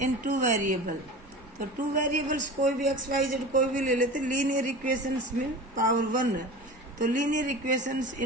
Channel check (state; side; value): normal; both; correlation 0.34